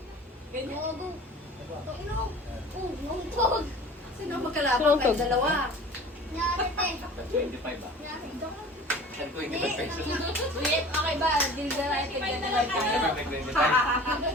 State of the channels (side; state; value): both; normal; correlation 0.43